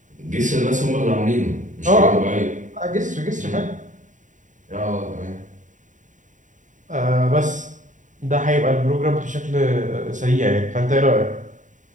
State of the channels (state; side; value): late; left; 0.36 ms